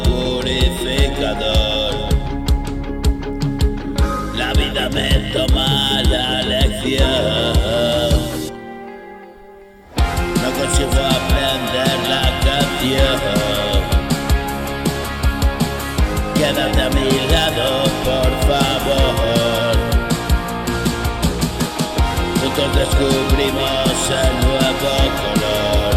purificador. La vida me toma la lección. No consigo aprender la canción. Quédate a mi lado, por favor. Juntos descubrimos el nuevo color.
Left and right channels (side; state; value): both; identical; correlation 1.00